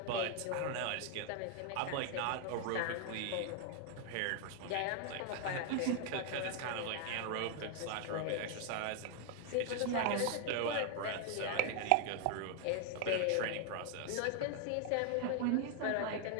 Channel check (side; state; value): both; different; correlation 0.00